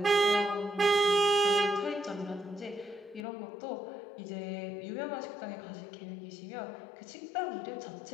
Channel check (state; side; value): drops out; right; at 3.2 s